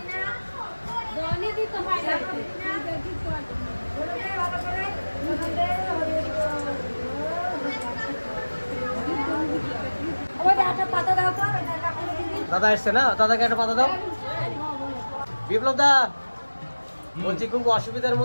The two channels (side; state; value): both; inverted; correlation -1.00